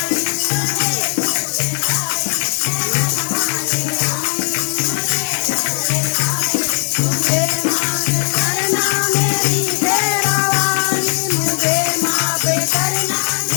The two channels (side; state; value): right; silent; digital silence